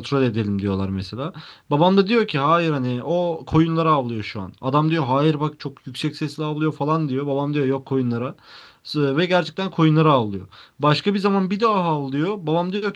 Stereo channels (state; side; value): identical; both; correlation 1.00